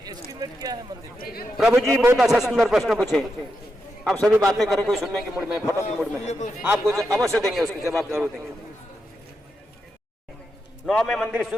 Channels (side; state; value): both; normal; correlation 0.85